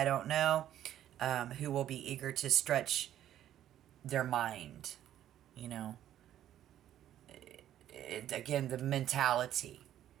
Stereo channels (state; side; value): quieter; left; 11.7 dB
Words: don't know. Who will be eager to stretch their mind, again, the mentality.